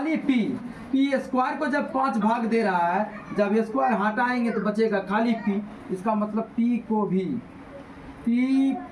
पी स्क्वायर को जब 5 भाग दे रहा है, जब स्क्वायर हटाएंगे तो बचेगा खाली पी। इसका मतलब पी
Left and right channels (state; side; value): identical; both; correlation 1.00